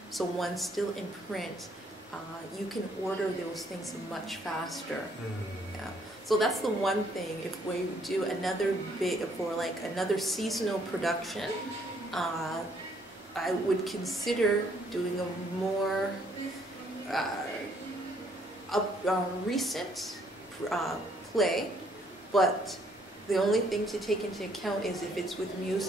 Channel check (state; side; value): normal; both; correlation 0.67